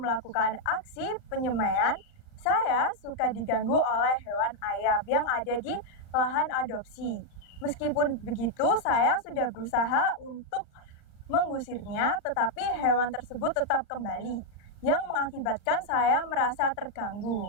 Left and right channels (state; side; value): late; right; 39 ms